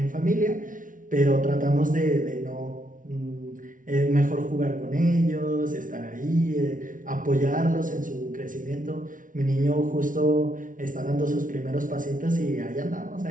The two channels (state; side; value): late; left; 0.38 ms